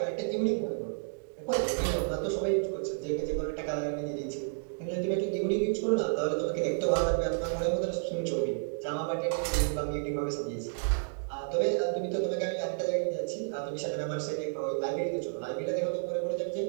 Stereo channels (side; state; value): left; silent; digital silence